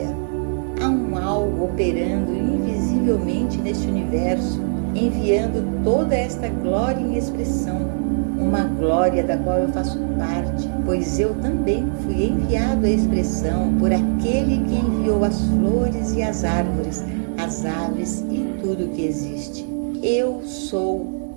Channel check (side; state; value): left; silent; digital silence